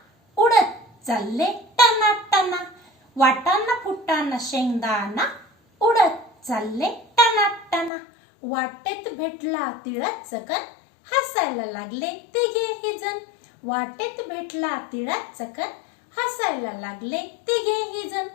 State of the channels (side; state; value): right; drops out; at 7.9 s